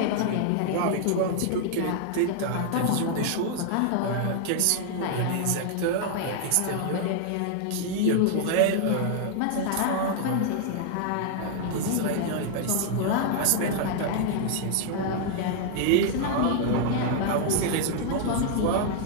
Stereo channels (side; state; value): both; different; correlation -0.01